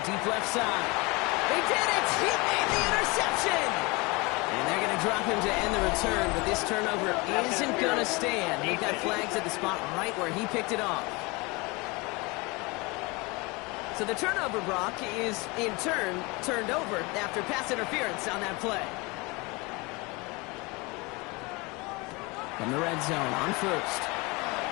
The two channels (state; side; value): quieter; right; 25.9 dB